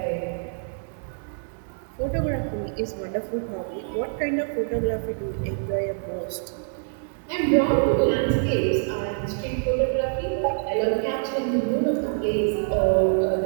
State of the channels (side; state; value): left; silent; digital silence